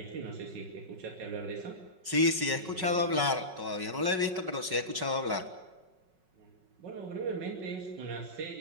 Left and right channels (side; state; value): left; late; 5.4 ms